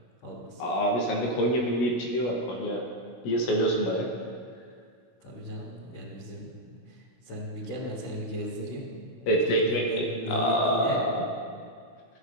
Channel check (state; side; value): late; right; 16 ms